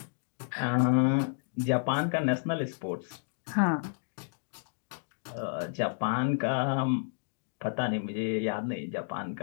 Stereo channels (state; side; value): silent; right; digital silence